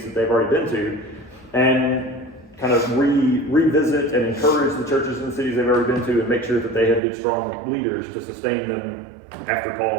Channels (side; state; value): left; drops out; at 7.0 s